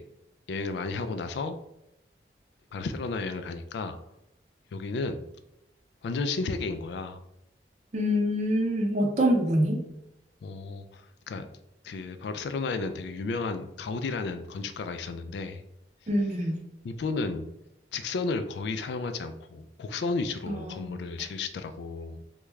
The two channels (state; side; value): normal; both; correlation 0.59